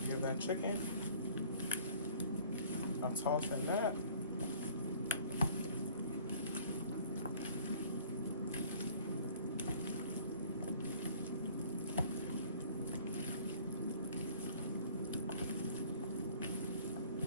give that chicken a toss in that.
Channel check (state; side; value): inverted; both; correlation -0.53